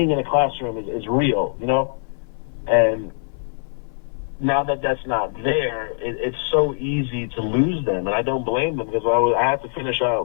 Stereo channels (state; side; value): silent; right; 59 dB below the other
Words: in a classroom is real, and now that that's not there, it's so easy to lose them, and I don't blame them because I had to finish